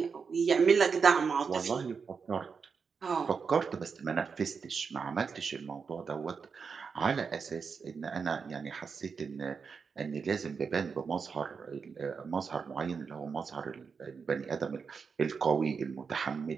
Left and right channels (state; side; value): quieter; left; 5.6 dB